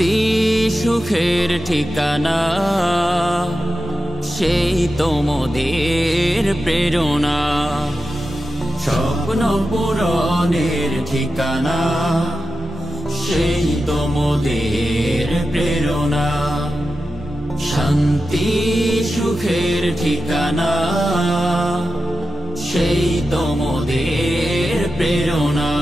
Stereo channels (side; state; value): both; normal; correlation 0.91